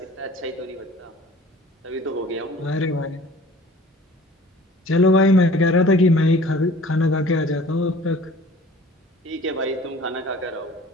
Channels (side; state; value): both; normal; correlation 0.48